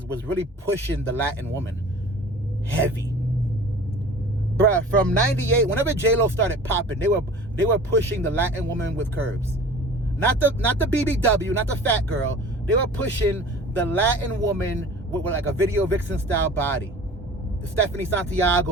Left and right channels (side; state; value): both; normal; correlation 0.42